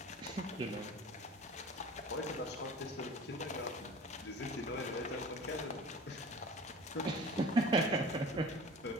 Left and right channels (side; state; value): both; normal; correlation 0.41